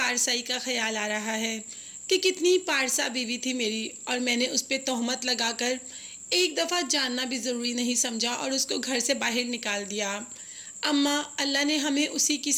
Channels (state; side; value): identical; both; correlation 1.00